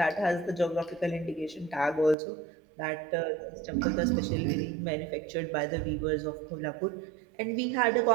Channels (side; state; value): left; drops out; at 2.1 s